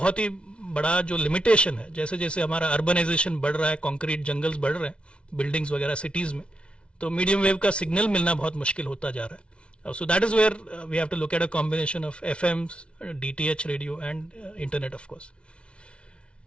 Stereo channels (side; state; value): right; late; 0.059 ms